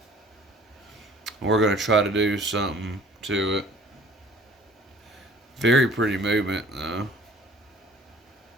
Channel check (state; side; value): normal; both; correlation 0.52